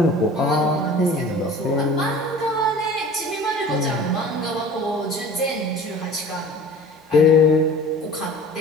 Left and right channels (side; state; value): both; normal; correlation 0.42